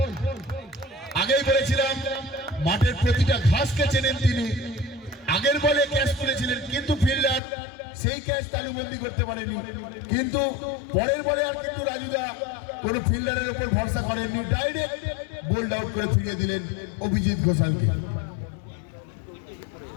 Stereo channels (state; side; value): drops out; right; at 7.4 s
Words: আগেই বলেছিলাম মাঠের প্রতিটা ঘাসকে চেনেন তিনি। আগের বলে ক্যাচ তুলেছিলেন, কিন্তু ফিল্ডার সেই ক্যাচ তালুবন্দি করতে পারেনি। কিন্তু পরের বলে আর কিন্তু রাজুদা কোন ফিল্ডারের উপর ভরসা করেননি, ডাইরেক্ট বোল্ড আউট করে ফিরিয়ে দিলেন অভিজিৎ ঘোষালকে।